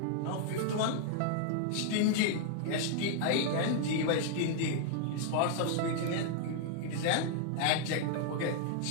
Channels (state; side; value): different; both; correlation 0.00